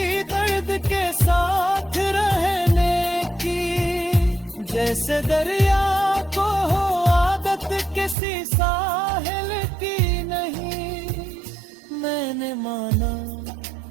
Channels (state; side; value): drops out; left; at 8.2 s